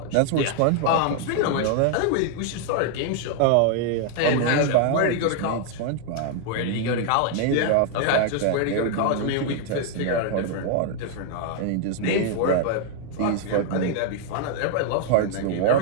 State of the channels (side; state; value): both; different; correlation 0.00